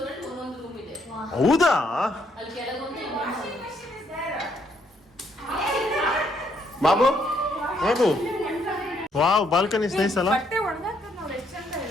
ಹೌದಾ? Babu Babu wow balcony nice ಅಲ್ಲ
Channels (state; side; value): normal; both; correlation 0.72